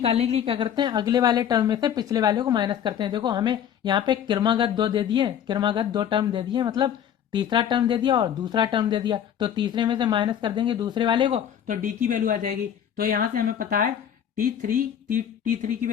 के लिए क्या करते हैं, अगले वाले टर्म में से पिछले वाले को माइनस करते हैं। देखो हमें यहाँ पे क्रमागत 2 दे दिए, क्रमागत 2 टर्म दे दिए, मतलब तीसरा टर्म दे दिया और दूसरा टर्म दे दिया, तो तीसरे में से माइनस कर देंगे दूसरे वाले को, तो डी की वैल्यू आ जाएगी। तो यहाँ से हमें पता है T3 की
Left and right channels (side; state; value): right; quieter; 9.3 dB